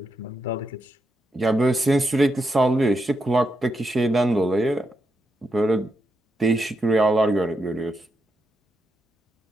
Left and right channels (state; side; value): normal; both; correlation 0.84